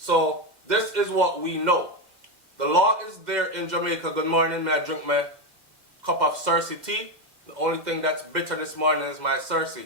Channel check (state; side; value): late; left; 2.0 ms